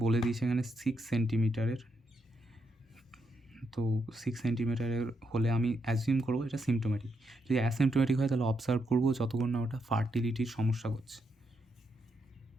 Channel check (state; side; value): normal; both; correlation 0.80